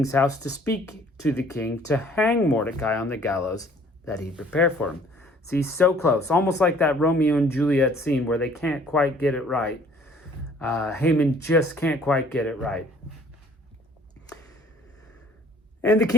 house to speak to the king to hang Mordecai on the gallows that he prepared for him. See, so close, almost like that Romeo and Juliet scene where they can't quite get it right. Haman just can't quite get it right. And the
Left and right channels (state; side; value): normal; both; correlation 0.56